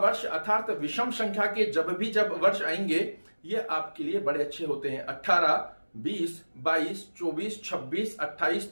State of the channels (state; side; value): inverted; both; correlation -1.00